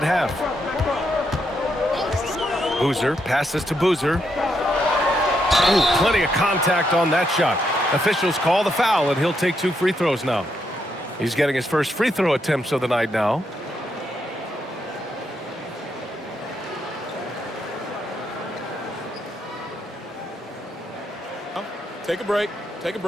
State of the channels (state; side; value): normal; both; correlation 0.79